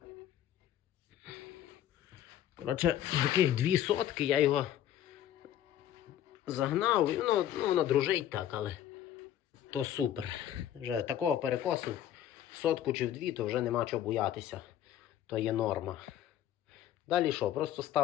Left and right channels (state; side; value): quieter; right; 11.3 dB